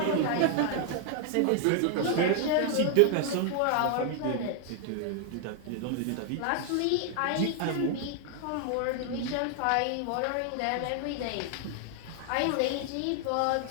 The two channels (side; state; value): both; different; correlation 0.00